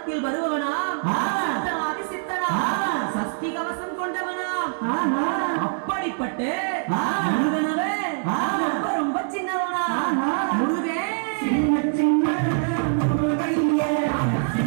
வருபவனா, சித்தனா, சஸ்தி கவசம் கொண்டவனா, அப்படிப்பட்ட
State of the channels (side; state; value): left; silent; digital silence